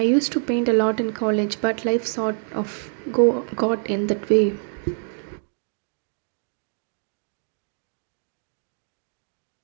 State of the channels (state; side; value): silent; left; 62 dB below the other